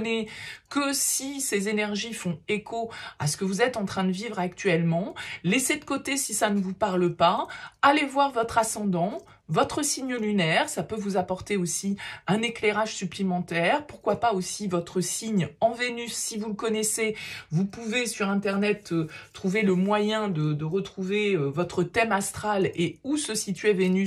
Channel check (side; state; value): both; identical; correlation 1.00